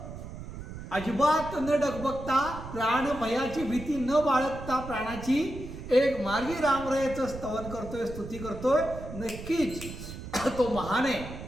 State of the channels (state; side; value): noise; right; rumble, 11 dB below the sound